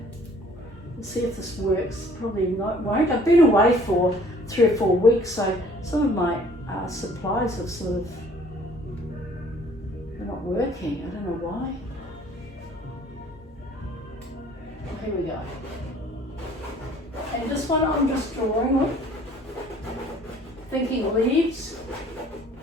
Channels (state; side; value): normal; both; correlation 0.56